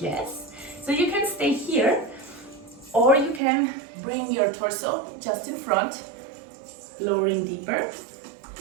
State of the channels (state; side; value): drops out; left; at 3.4 s